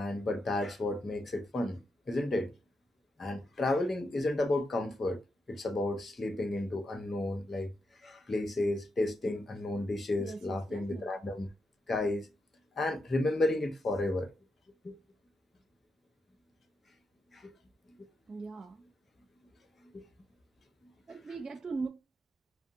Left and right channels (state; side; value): normal; both; correlation 0.84